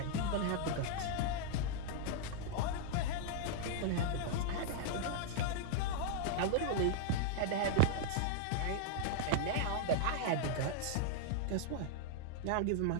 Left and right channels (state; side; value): different; both; correlation -0.01